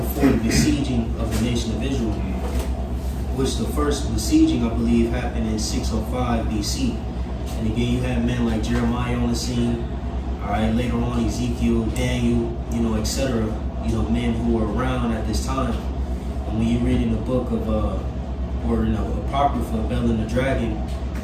the besieging of the nation of Israel, which the first besieging, I believe, happened in 605 BC. And again, you had men like Jeremiah on the scene. All right, later on, Ezekiel, Daniel, etc. Men who were around at this time. And when you read in the book of, Apocrypha, Bel and the Dragon,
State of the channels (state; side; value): identical; both; correlation 1.00